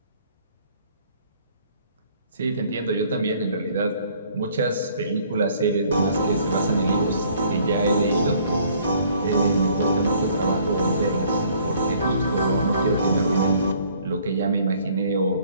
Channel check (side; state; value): both; inverted; correlation -0.59